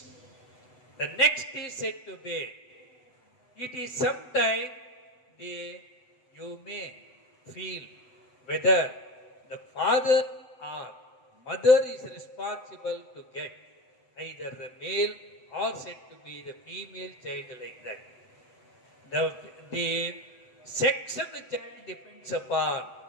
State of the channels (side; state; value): right; late; 7.9 ms